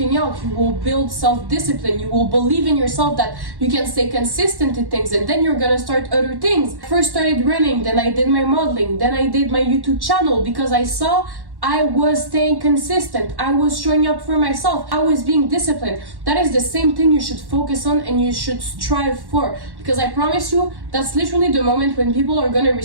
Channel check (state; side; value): late; left; 1.1 ms